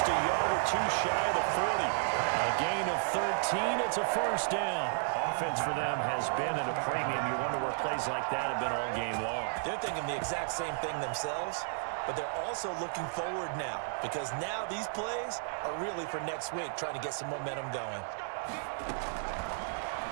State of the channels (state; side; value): silent; left; digital silence